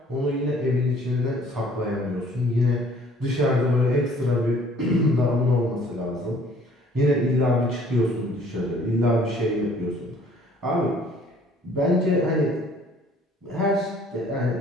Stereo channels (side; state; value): both; normal; correlation 0.56